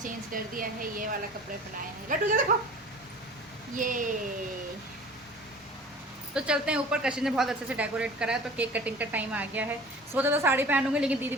कर दिया है, ये वाला कपड़े पहनाए हैं। लड्डू जो देखो ये। तो चलते हैं ऊपर, कशिश ने बहुत अच्छे से डेकोरेट करा है, तो केक कटिंग का टाइम आ गया है। सोचा तो साड़ी पहनूंगी, लेकिन दीदी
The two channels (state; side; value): normal; both; correlation 0.43